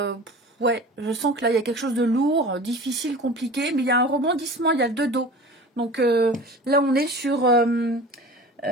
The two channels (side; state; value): both; normal; correlation 0.38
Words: Ouais, je sens que là, il y a quelque chose de lourd, difficile, compliqué, mais il y a un rebondissement, il y a le 2 dos. Donc là, on est sur